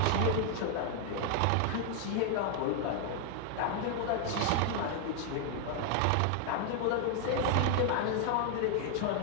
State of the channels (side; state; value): both; different; correlation 0.00